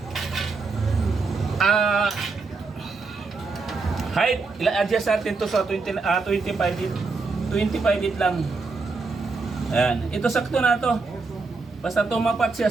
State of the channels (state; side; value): quieter; left; 4.1 dB